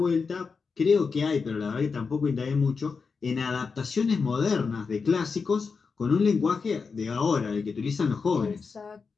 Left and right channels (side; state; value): right; quieter; 5.0 dB